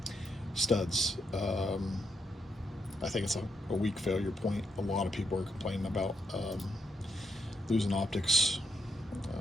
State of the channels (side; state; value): both; normal; correlation 0.80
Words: studs. I think it's a weak failure point. A lot of people are complaining about losing optics